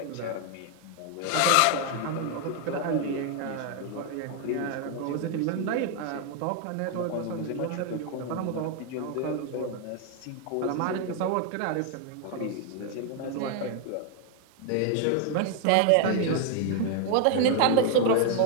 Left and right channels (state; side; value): different; both; correlation 0.00